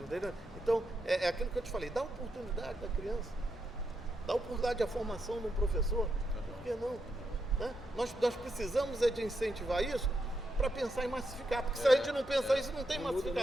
entendeu? Então, é aquilo que eu te falei, dá oportunidade da criança, dá oportunidade à formação de um professor, por que não? Né? Nós precisamos de incentivar isso para pensar em massificar, porque se a gente não pensar isso, não tem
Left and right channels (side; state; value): both; normal; correlation 0.83